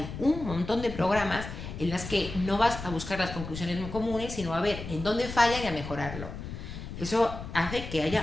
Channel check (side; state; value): left; noise; rumble, 9 dB below the sound